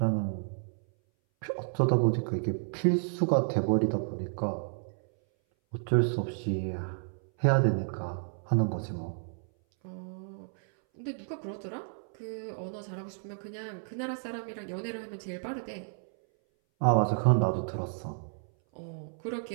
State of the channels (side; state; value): left; silent; 57 dB below the other